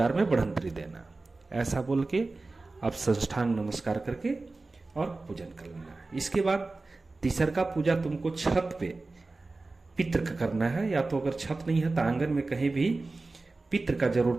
में बढ़ंतरी देना। ऐसा बोल के आप साष्टांग नमस्कार करके और पूजन कर लेना। इसके बाद तीसरा पूजा तुमको छत पे पितृ का करना है, या तो अगर छत नहीं है तो आंगन में कहीं भी पितृ का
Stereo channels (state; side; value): quieter; left; 3.4 dB